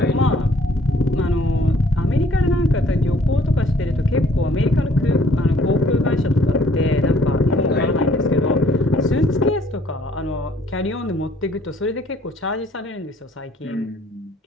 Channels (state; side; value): normal; both; correlation 0.60